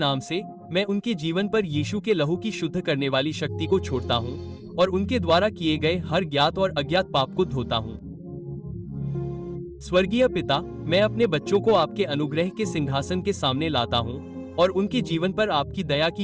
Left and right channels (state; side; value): identical; both; correlation 1.00